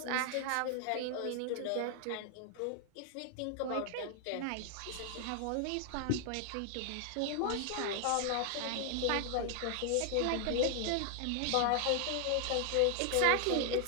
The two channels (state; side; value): different; both; correlation 0.00